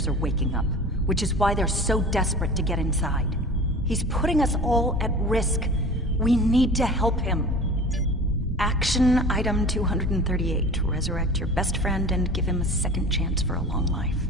are waking up, which is why they're so desperate to get inside. He's putting us all at risk. We need to help him. Action item 238. Resurrect your best friend and give him a second chance for a long life.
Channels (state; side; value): normal; both; correlation 0.39